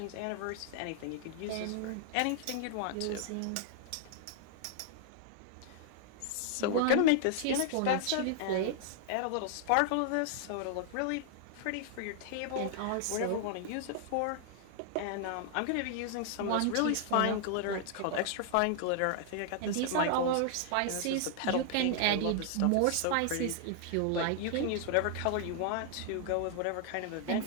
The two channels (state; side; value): different; both; correlation -0.01